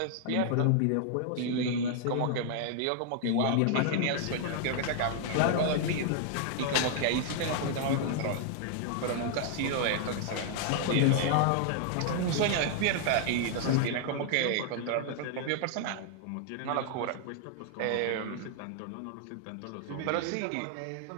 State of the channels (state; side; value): different; both; correlation 0.00